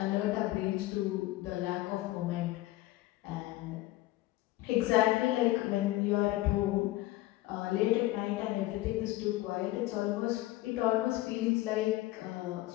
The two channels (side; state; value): right; quieter; 17.4 dB